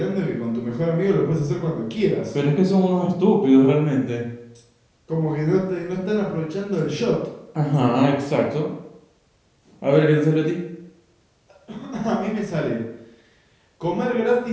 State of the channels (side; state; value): both; identical; correlation 1.00